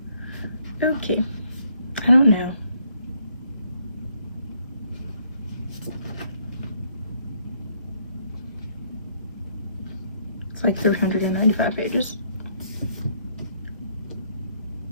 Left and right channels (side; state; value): both; inverted; correlation -0.69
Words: Okay, I don't know. It's like 395 pages.